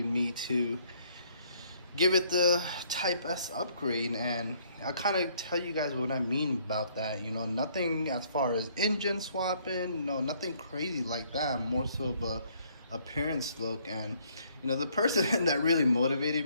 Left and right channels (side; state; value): both; inverted; correlation -0.65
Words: me to give it the Type S upgrade, and I'll kind of tell you guys what I mean about that. You know, nothing as far as engine swapping, no, nothing crazy like that. More so of a appearance look. And you know, the person that really